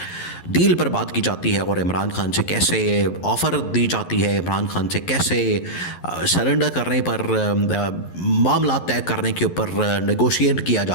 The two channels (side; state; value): right; late; 11 ms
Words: डील पर बात की जाती है और इमरान खान से कैसे ऑफ़र दी जाती है, इमरान खान से कैसे सरेंडर करने पर मामला तय करने के ऊपर नेगोशिएट किया